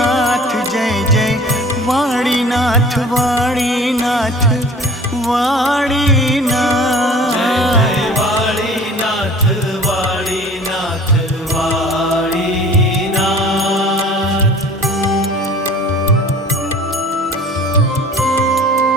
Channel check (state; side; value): normal; both; correlation 0.46